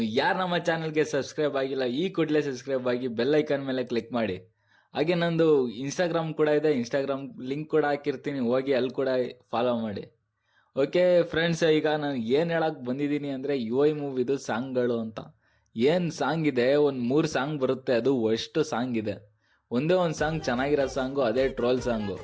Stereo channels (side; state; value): both; identical; correlation 1.00